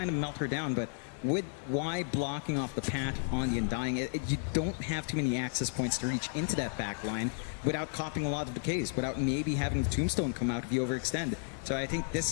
of melt her down, but with Y blocking off the path on the Undying, you don't have too many access points to reach into that back line without copying a lot of decays, without maybe having the Tombstone come out if you overextend. So I think this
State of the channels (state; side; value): silent; right; 56 dB below the other